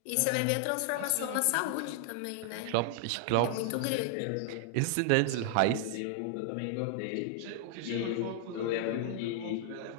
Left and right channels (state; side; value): different; both; correlation 0.00